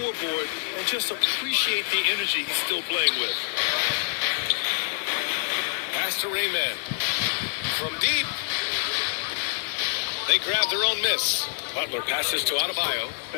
and just appreciate the energy he's still playing with. Pass to Rayman. From deep. They grab their own miss. Butler passes to Adebayo,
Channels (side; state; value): right; silent; digital silence